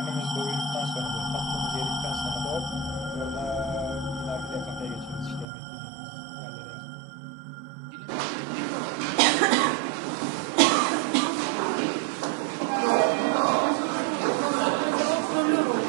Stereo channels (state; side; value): drops out; left; at 5.5 s